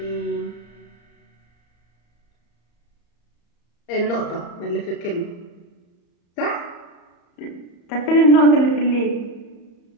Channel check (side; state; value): right; late; 34 ms